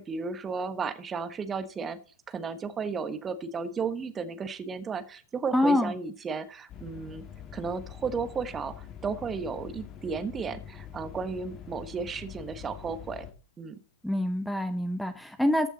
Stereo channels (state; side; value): normal; both; correlation 0.78